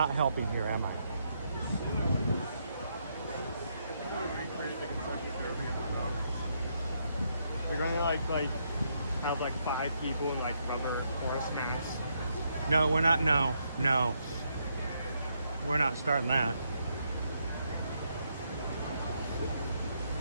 helping here, am I? We're going to like have like 5 people in like rubber horse masks. No, we're not. No. We're not starting that.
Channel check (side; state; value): both; inverted; correlation -0.77